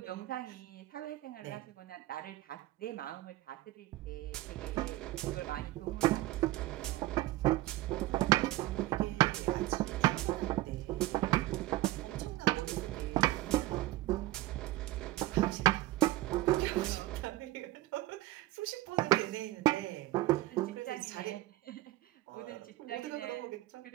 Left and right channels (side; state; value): left; quieter; 17.1 dB